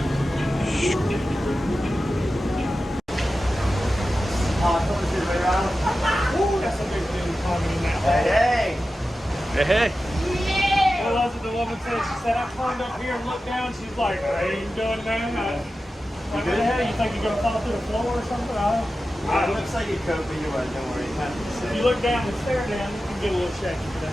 Hey, hey. Well, that's what the woman said. She said, I climbed up here and looked down. She's like, I ain't doing that. Like, what the hell? You think you're going to fall through the floor or something? It looks like you could, but you won't. Don't worry. If you look down and stare down, you can get a little shaky, but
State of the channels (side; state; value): both; normal; correlation 0.93